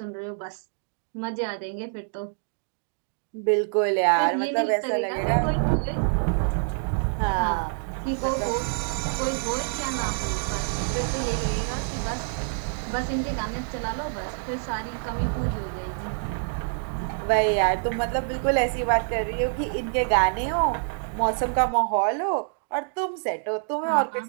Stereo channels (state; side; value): silent; left; digital silence